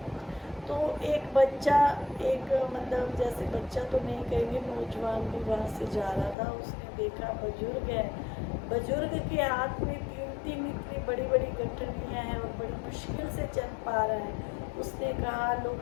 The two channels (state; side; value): drops out; right; at 6.4 s